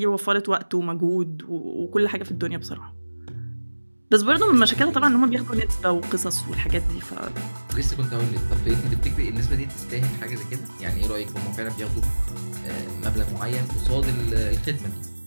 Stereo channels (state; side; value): inverted; both; correlation -1.00